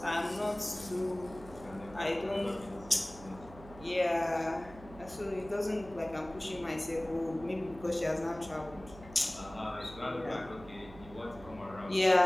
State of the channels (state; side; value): noise; right; hum, 17 dB below the sound